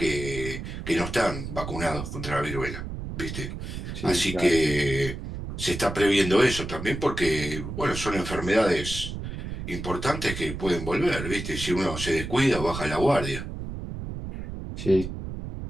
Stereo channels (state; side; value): noise; right; rumble, 7 dB below the sound